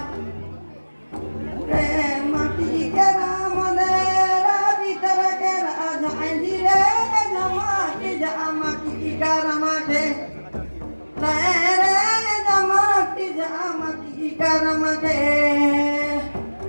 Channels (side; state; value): both; inverted; correlation -1.00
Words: रे माटी के राम देरा भीतर के राजा जी रे जमाती जमाती करमते रे जमाती जमाती करमते